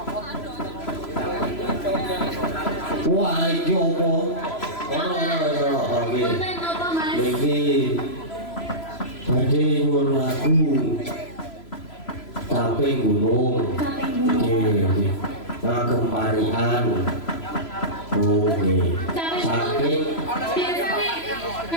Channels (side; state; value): right; late; 3.0 ms